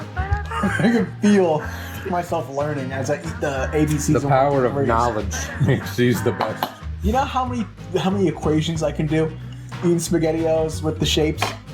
I can feel myself learning as I eat the ABCs. The power of rings. knowledge makes these the best. You know how many equations I can do eating SpaghettiOs with the shapes?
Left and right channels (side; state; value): both; identical; correlation 1.00